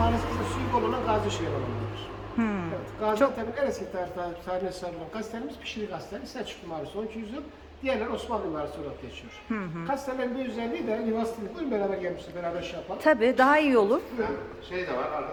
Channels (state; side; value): identical; both; correlation 1.00